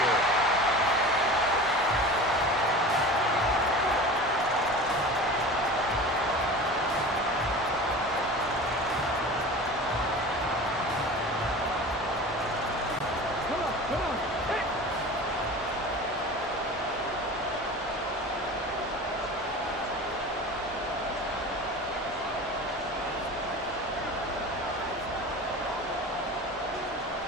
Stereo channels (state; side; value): normal; both; correlation 0.35